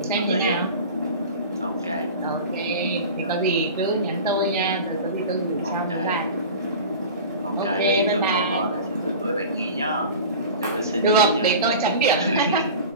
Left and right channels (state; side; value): inverted; both; correlation -0.35